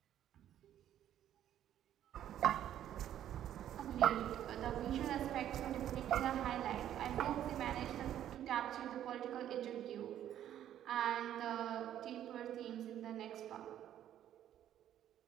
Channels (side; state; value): left; quieter; 11.2 dB